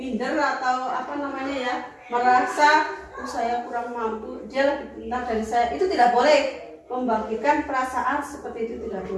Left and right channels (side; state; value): both; identical; correlation 1.00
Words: atau apa namanya ya, merasa saya kurang mampu, dia lebih pintar dari saya, itu tidak boleh. Membangkitkan perasaan seperti itu tidak